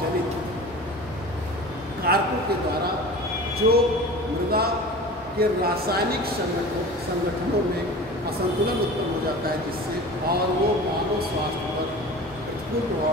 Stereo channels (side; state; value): both; normal; correlation 0.37